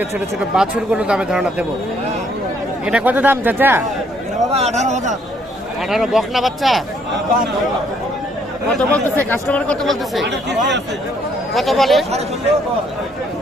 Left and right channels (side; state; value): both; normal; correlation 0.67